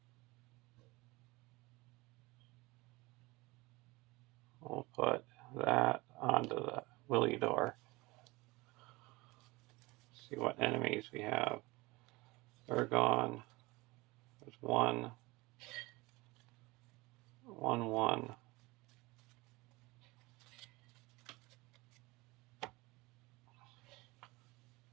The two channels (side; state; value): left; quieter; 22.6 dB